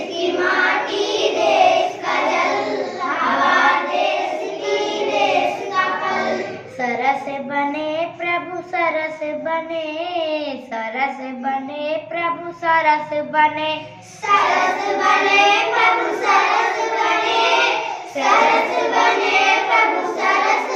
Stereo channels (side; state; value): both; identical; correlation 1.00